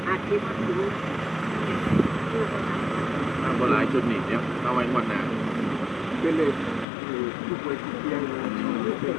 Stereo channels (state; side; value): drops out; right; at 6.9 s